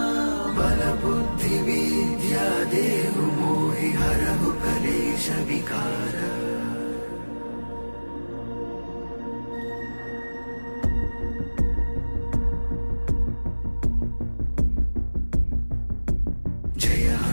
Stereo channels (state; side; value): inverted; both; correlation -1.00